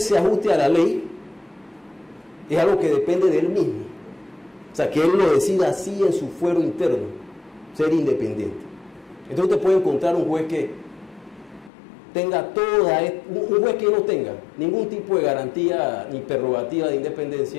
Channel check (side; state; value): right; drops out; at 11.7 s